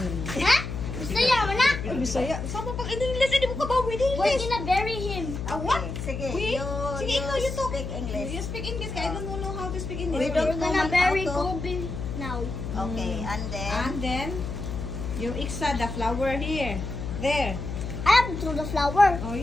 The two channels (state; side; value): noise; left; hum, 6 dB below the sound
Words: Ha? Bisaya mo na? Bisaya? Sama pag in-English, hindi mo ka ba with English? We're gonna bury him. What? Sige, Wait, sige, ikaw, you talk. speak English. You speak English, kaya I don't know how to speak English. We don't We're gonna know bury how to- Kobe now. Okay, and then... And then, you iksa the flower here. There. I have to throw the flower. Oh,